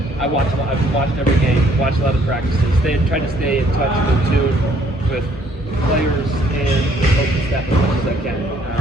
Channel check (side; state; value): both; normal; correlation 0.63